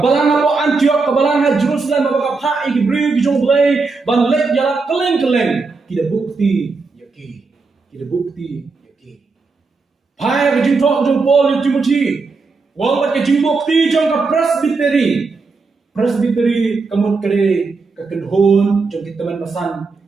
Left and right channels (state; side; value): quieter; left; 4.2 dB